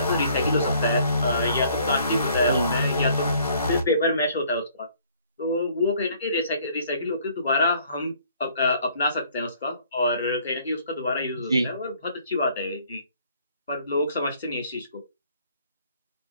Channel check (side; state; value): both; inverted; correlation -0.60